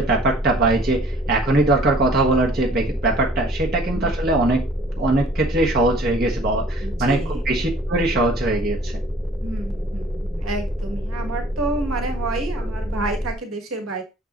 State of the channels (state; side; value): normal; both; correlation 0.54